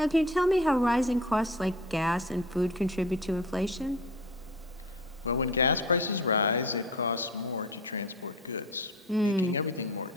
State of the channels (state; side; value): normal; both; correlation 0.37